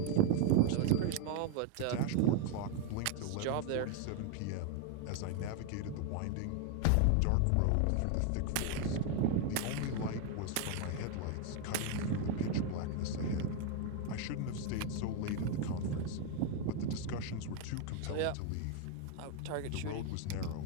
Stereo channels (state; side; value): different; both; correlation 0.01